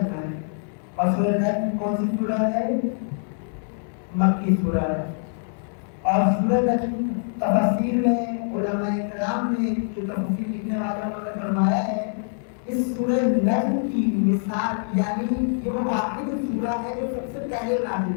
ہے، اور سورہ نجم کون سی سورہ ہے؟ مکی سورہ ہے۔ اور سورہ نجم تفسیر میں علماء کرام نے جو تفسیر لکھنے والوں نے فرمایا ہے، اس سورہ نجم کی مثال یعنی یہ وہ واحد سورہ ہے جو سب سے پہلے نازل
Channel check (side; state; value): right; silent; digital silence